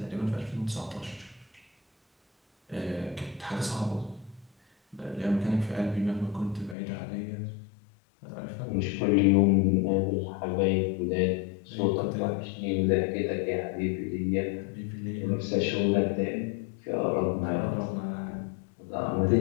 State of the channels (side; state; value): right; drops out; at 6.8 s